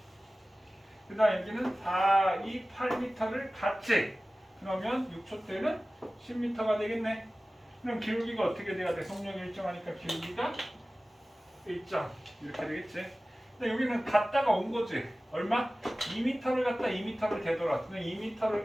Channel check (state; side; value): normal; both; correlation 0.97